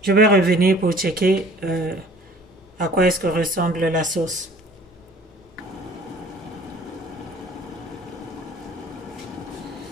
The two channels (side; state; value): both; normal; correlation 0.51